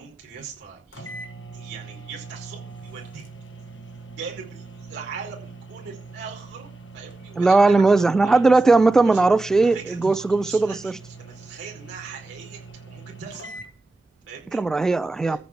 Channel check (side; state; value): left; quieter; 3.1 dB